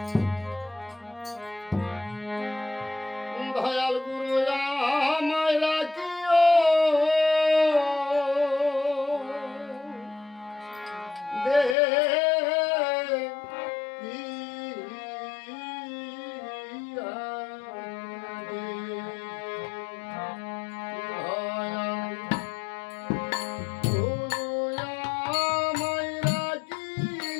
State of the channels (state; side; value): drops out; right; at 11.8 s